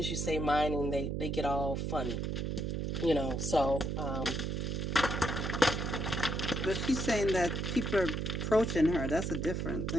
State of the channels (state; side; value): noise; right; hum, 1 dB below the sound